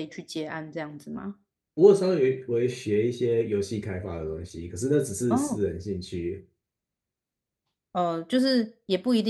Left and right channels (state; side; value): identical; both; correlation 1.00